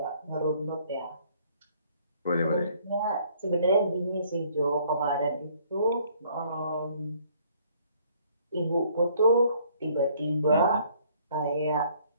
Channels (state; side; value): inverted; both; correlation -0.61